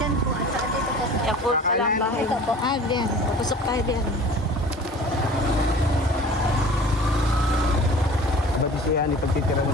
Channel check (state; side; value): normal; both; correlation 0.43